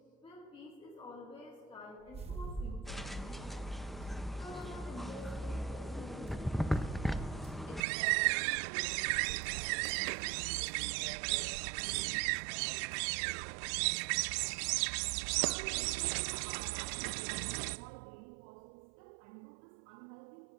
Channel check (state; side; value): drops out; left; at 7.8 s